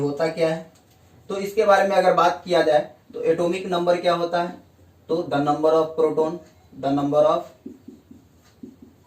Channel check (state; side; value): identical; both; correlation 1.00